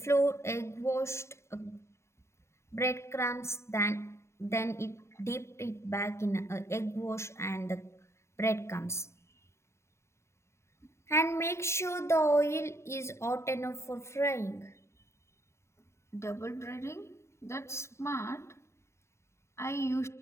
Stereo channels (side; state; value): right; late; 0.13 ms